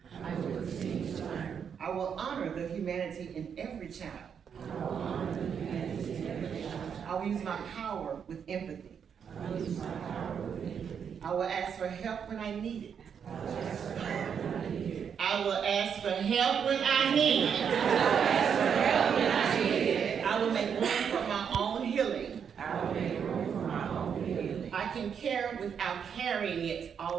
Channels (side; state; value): left; quieter; 7.4 dB